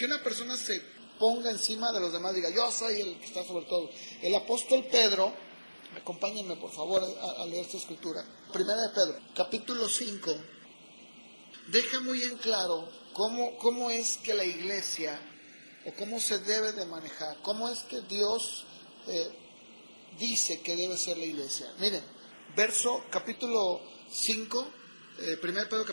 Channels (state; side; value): inverted; both; correlation -1.00